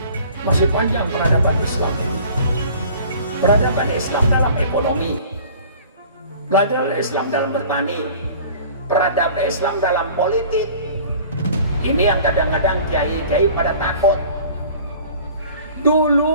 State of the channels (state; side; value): inverted; both; correlation -0.46